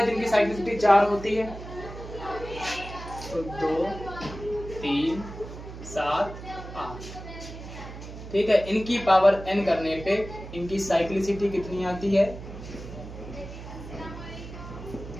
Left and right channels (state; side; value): noise; right; hum, 12 dB below the sound